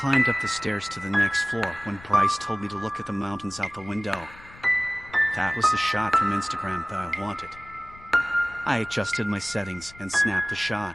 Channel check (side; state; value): left; noise; rumble, 21 dB below the sound